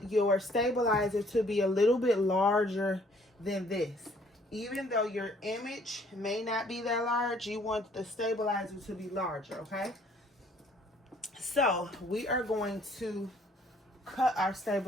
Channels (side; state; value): both; normal; correlation 0.61